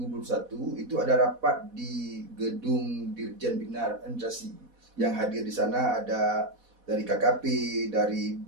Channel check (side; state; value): left; late; 4.1 ms